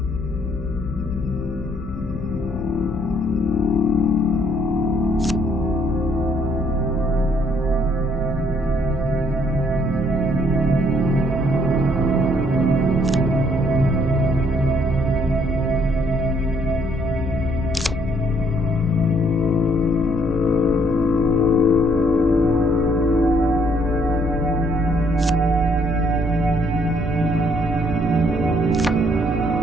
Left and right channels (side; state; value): both; normal; correlation 0.67